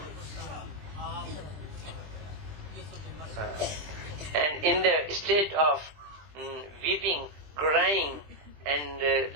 And in the state of weeping, crying, and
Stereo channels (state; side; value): late; left; 20 ms